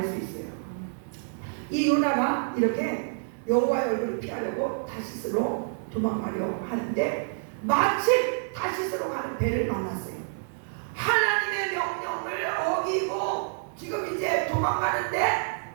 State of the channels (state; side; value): silent; left; digital silence